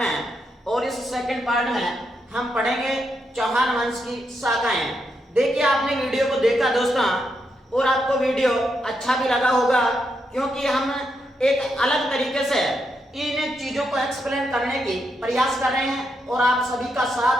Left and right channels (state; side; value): normal; both; correlation 0.82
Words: और इस सेकंड पार्ट में हम पढ़ेंगे चौहान वंश की शाखाएं। देखिए, आपने वीडियो को देखा दोस्तों और आपको वीडियो अच्छा भी लगा होगा, क्योंकि हम एक अलग तरीके से इन चीजों को एक्सप्लेन करने की प्रयास कर रहे हैं और आप सभी का